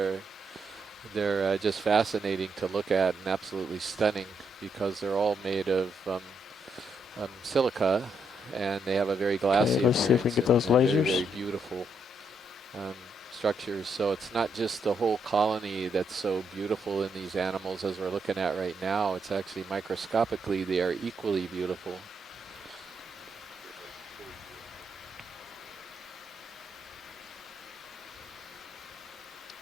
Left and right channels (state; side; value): normal; both; correlation 0.78